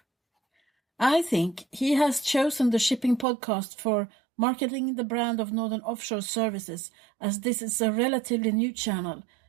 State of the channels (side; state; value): left; drops out; at 3.2 s